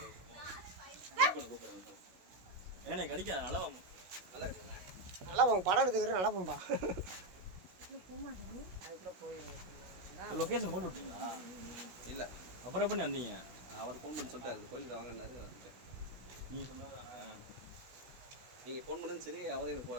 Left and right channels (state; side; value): late; left; 16 ms